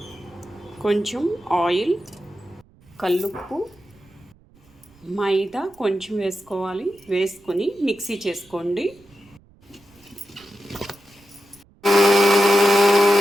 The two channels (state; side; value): noise; right; rumble, 29 dB below the sound